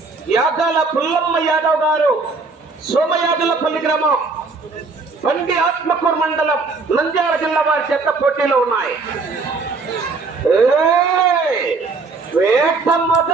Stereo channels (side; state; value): left; quieter; 4.1 dB